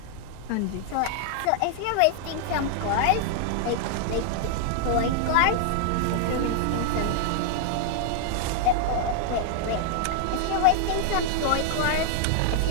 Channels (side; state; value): both; different; correlation 0.00